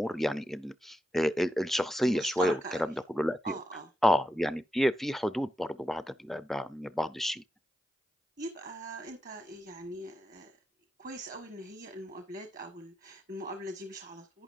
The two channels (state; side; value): normal; both; correlation 0.87